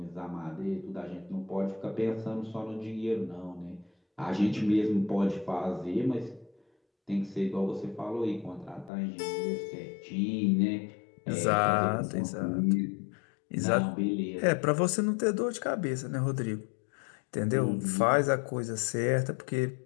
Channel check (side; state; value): right; drops out; at 8.9 s